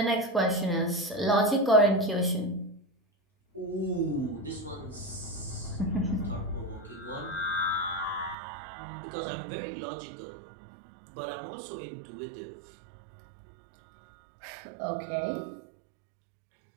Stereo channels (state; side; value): drops out; left; at 8.3 s